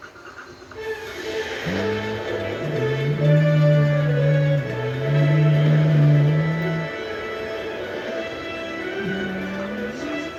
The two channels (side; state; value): both; identical; correlation 1.00